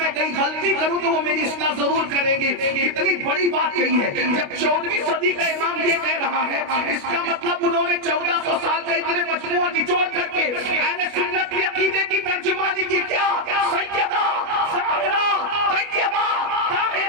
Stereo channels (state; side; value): late; left; 29 ms